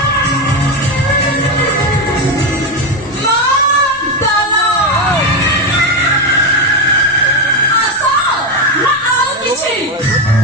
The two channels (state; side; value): normal; both; correlation 0.11